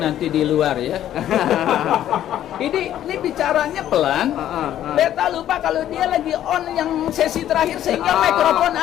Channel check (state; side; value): quieter; right; 11.7 dB